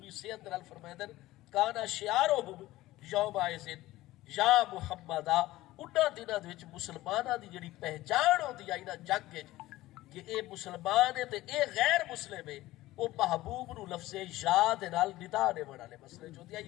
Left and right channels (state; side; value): quieter; right; 16.9 dB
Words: صحت نال فرمائندے کانا شعارہم یومئذ یا محمد، انہاں دناں وچ مسلماناں دی جڑی پہچان ہوندی آئی نا جگ وچ کہ اے مسلمان ہے تے اے غیر مسلم ہے، او محبوب نو لفظ یا دے نال ندا دیون والے مسئلے چ ہوندی